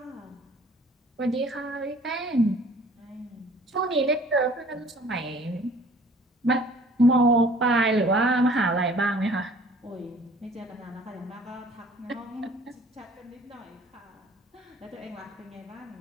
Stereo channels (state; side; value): normal; both; correlation 0.52